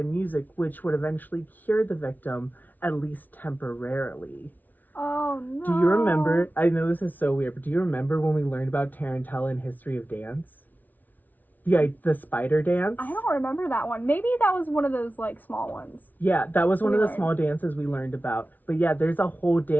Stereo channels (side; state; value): right; late; 0.080 ms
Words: music, which would eventually cure the victim, at least temporarily. Oh, no. Do you remember, I know this is so weird, but do you remember when we learned about tarantella in History of Dance? The spider dance? I don't remember that one. Maybe that was one of those, like, small ones. Yeah, that was one of the small dances we learned about. But yeah, there's a whole